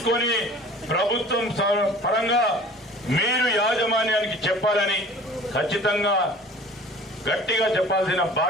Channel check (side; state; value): both; normal; correlation 0.45